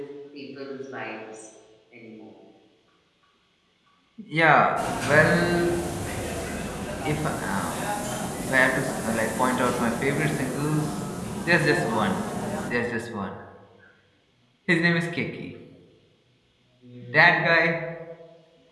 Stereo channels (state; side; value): identical; both; correlation 1.00